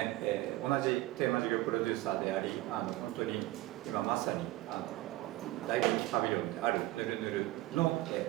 同じテーマ事業プロデューサーであり、本当に今まさに大人気パビリオンであるぬるぬるの、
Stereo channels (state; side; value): quieter; left; 17.5 dB